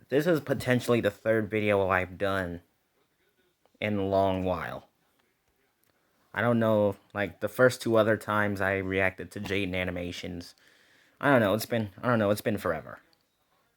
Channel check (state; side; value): identical; both; correlation 1.00